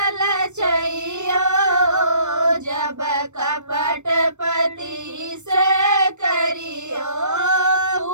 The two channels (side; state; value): left; late; 0.84 ms